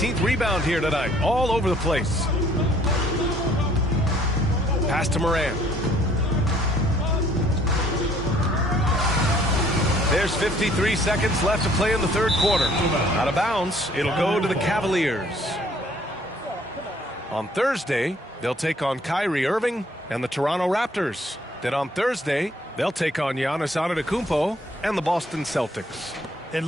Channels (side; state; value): both; normal; correlation 0.60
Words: rebound here tonight. All over the place. Pass to Moran. There's 53 seconds left to play in the third quarter. Out of bounds, it'll go to the Cavaliers. On Thursday, they'll take on Kyrie Irving and the Toronto Raptors. Then on Thursday, they'll take on Giannis Antetokounmpo and the Boston Celtics. And